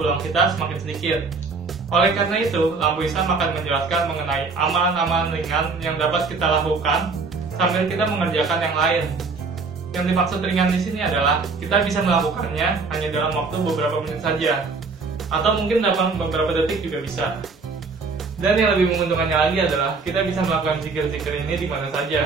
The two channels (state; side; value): quieter; left; 4.4 dB